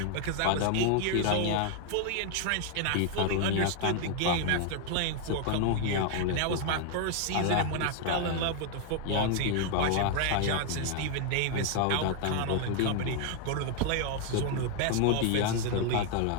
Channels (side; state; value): both; different; correlation 0.00